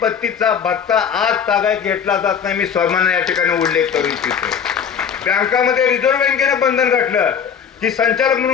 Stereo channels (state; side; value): quieter; right; 7.5 dB